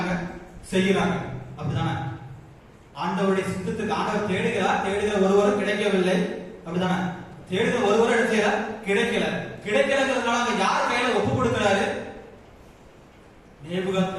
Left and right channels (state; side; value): identical; both; correlation 1.00